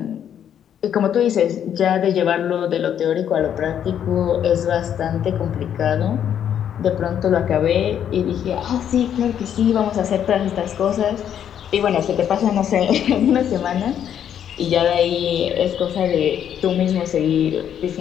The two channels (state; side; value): quieter; right; 9.4 dB